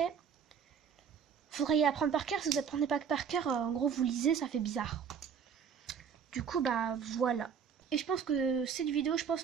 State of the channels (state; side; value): quieter; left; 7.1 dB